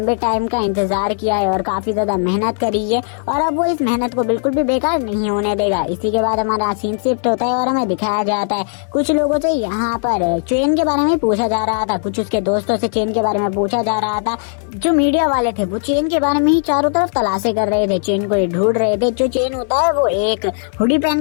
टाइम का इंतजार किया है और काफी ज्यादा मेहनत करी है और अब वो इस मेहनत को बिल्कुल बिल्कुल भी बेकार नहीं होने देगा। इसी के बाद हमारा सीन शिफ्ट होता है और हमें दिखाया जाता है कुछ लोगों से यहाँ पर चेन के बारे में पूछा जा रहा था, कुछ उसके दोस्तों से चेन के बारे में पूछा जा रहा था। जो मीडिया वाले थे वो चेन के बारे में ही चारों तरफ तलाशें कर रहे थे, चेन को ही ढूंढ रहे थे। जो चेन होता है वो एक हुडी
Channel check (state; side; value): silent; right; 66 dB below the other